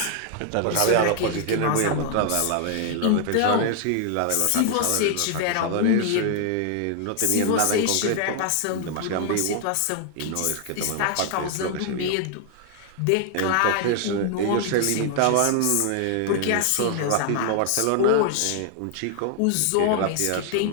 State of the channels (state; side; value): different; both; correlation 0.00